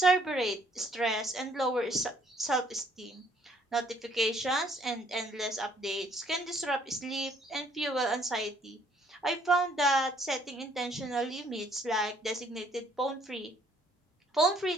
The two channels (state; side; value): normal; both; correlation 0.64